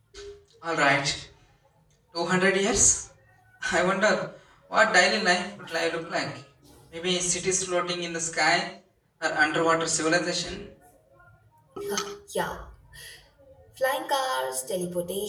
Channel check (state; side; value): identical; both; correlation 1.00